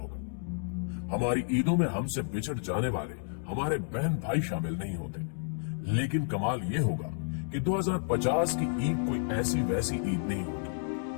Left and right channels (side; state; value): right; silent; digital silence